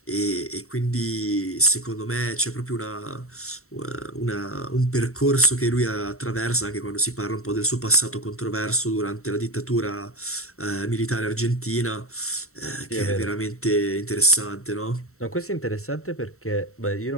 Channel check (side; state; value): right; late; 0.63 ms